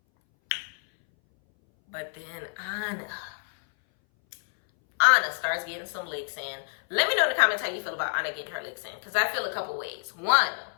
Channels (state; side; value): silent; right; 59 dB below the other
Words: Anna starts getting some licks in. Let me know in the comments how you feel about Anna getting her licks in, because I feel a couple ways. One,